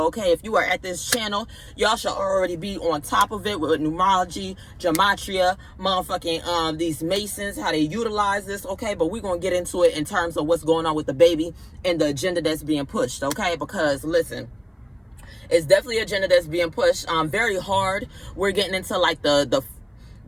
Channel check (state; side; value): identical; both; correlation 1.00